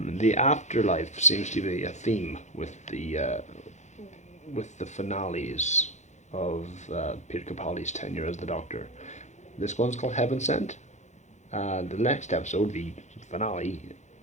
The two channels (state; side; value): late; right; 0.34 ms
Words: afterlife seems to be a theme with the finales of Peter Capaldi's tenure as the Doctor. This one's called Heaven Sent. The next episode, the finale